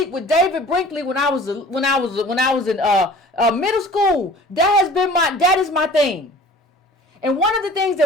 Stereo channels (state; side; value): normal; both; correlation 0.46